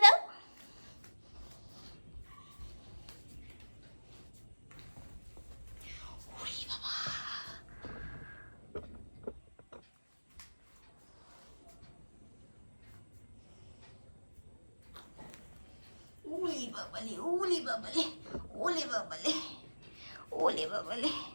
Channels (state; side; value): inverted; both; correlation -1.00